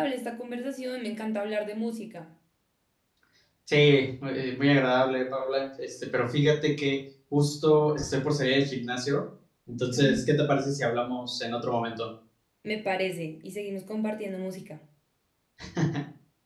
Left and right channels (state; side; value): identical; both; correlation 1.00